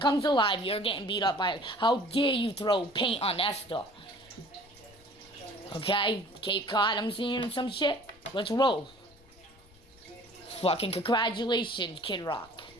alive, you're getting beat up by it. How dare you throw paint on Esther? Okay? Cape Cod, I'm seeing some shit. Let's roll. Fucking congratulations, Kid Rock.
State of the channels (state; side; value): noise; left; rumble, 27 dB below the sound